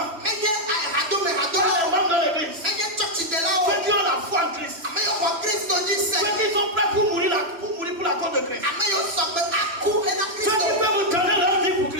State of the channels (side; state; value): left; late; 3.0 ms